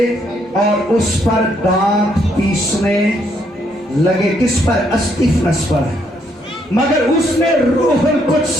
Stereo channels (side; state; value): both; normal; correlation 0.72